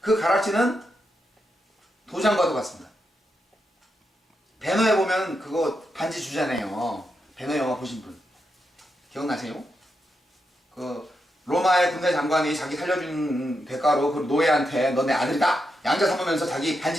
가락지는 도장과도 같습니다. 배너에 보면 그거 반지 주잖아요. 배너 영화 보신 분 기억나세요? 그 로마의 군대 장관이 자기 살려준 대가로 그 노예한테 너 내 아들이다 양자 삼으면서 자기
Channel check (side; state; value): both; normal; correlation 0.85